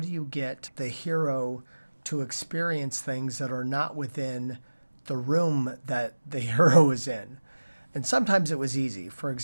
you get the hero to experience things that are not within the room that the hero is in? And sometimes it was easy. For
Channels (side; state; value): both; inverted; correlation -1.00